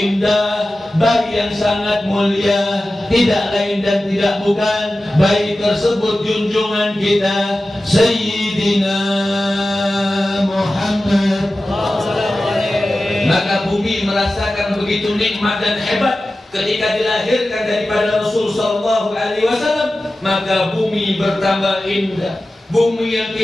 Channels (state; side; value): normal; both; correlation 0.95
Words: bayi yang sangat mulia, tidak lain dan tidak bukan, bayi tersebut junjungan kita Sayyidina Muhammad. Maka bumi merasakan begitu nikmat dan hebat ketika dilahirkan daripada Rasul sallallahu alaihi wasallam. Maka bumi bertambah indah. Bumi yang